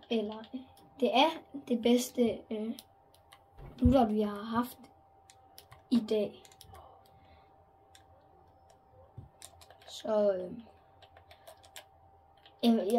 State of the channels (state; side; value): identical; both; correlation 1.00